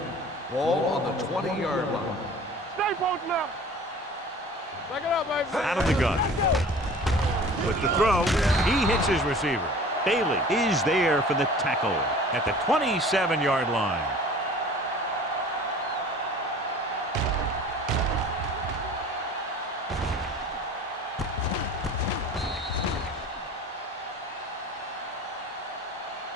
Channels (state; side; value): normal; both; correlation 0.44